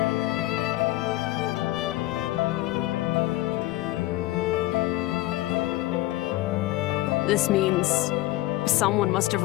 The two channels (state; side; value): quieter; right; 17.2 dB